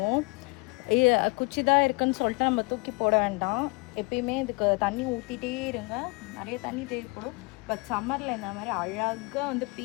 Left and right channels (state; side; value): quieter; right; 28.9 dB